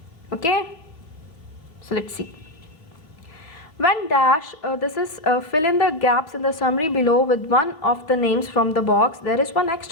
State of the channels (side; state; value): right; late; 3.2 ms